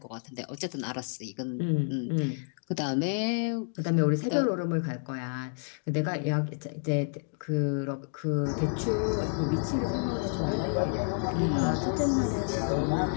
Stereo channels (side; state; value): right; silent; 58 dB below the other